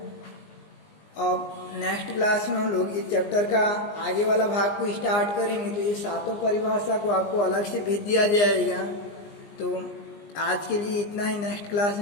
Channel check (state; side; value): late; right; 20 ms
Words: अब नेक्स्ट क्लास में हम लोग इस चैप्टर का आगे वाला भाग को स्टार्ट करेंगे। तो ये 7 परिभाषा को आपको अलग से भेज दिया जाएगा। तो आज के लिए इतना ही, नेक्स्ट क्लास